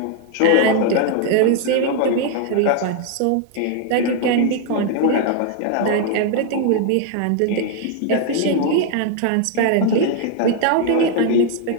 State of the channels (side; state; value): both; different; correlation 0.00